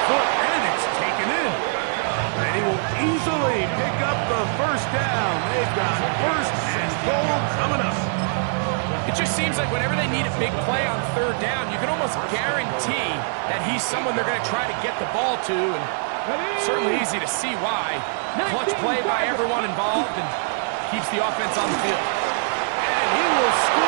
foot, and it's taken in. And he will easily pick up the 1st down. They've got 1st and goal coming up. It just seems like whenever they need a big play on 3rd down, you can almost guarantee that he's someone they're going to try to get the ball to, and certainly easy to see why. Clutch play by everyone involved and keeps the offense on the field. And he will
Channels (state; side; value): silent; left; digital silence